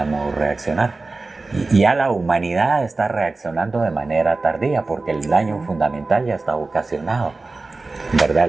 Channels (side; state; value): left; quieter; 3.5 dB